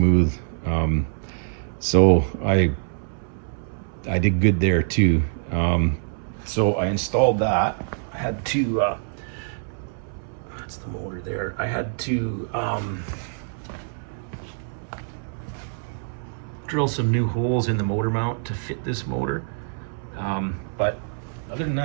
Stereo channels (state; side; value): silent; left; 62 dB below the other